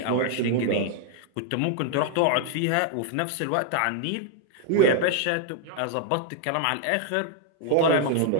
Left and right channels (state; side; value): different; both; correlation 0.00